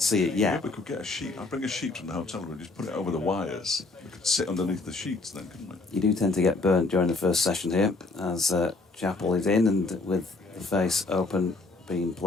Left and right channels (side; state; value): right; quieter; 3.5 dB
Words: see it yet. We could get a sheet. I'll bring a sheet from the hotel room, just put it over the wires. We could sit underneath the sheets then, couldn't we? You do tend to get burnt during the first session here, as Chappell is in, and with the face open, Bean